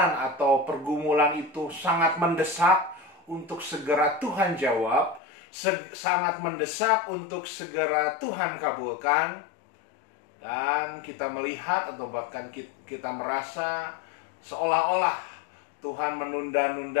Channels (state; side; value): drops out; right; at 5.2 s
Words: atau pergumulan itu sangat mendesak untuk segera Tuhan jawab, sangat mendesak untuk segera Tuhan kabulkan, dan kita melihat atau bahkan kita merasa seolah-olah Tuhan